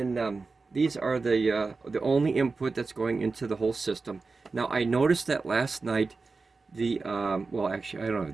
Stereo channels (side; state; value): left; quieter; 4.1 dB